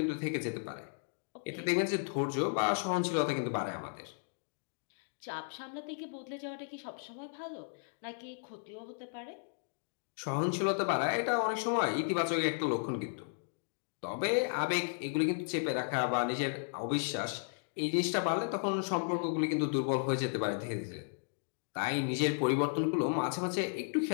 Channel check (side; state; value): right; silent; digital silence